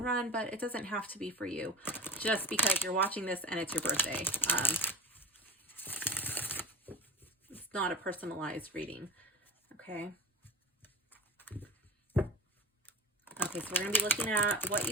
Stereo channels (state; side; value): normal; both; correlation 0.34